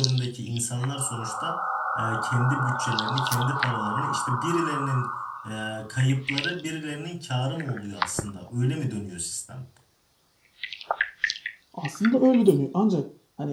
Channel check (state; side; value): identical; both; correlation 1.00